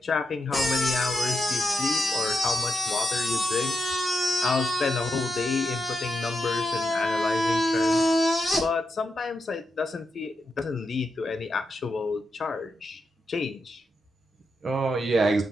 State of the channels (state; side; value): normal; both; correlation 0.85